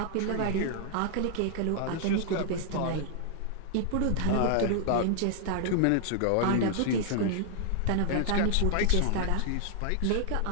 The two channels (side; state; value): both; different; correlation 0.00